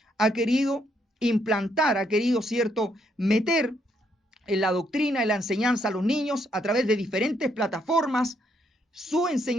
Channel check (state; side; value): normal; both; correlation 0.73